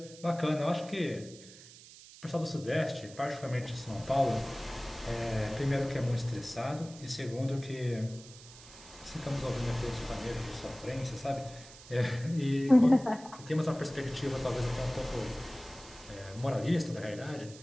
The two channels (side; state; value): right; noise; hiss, 18 dB below the sound